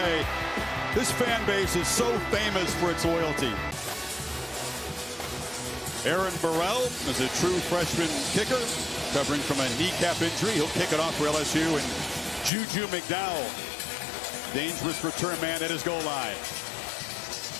This fan base is so famous for its loyalty. Aaron Burrell is a true freshman kicker, covering from a kneecap injury. He'll kick it off for LSU, and Juju McDowell, dangerous return man at his goal line.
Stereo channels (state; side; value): drops out; right; at 12.5 s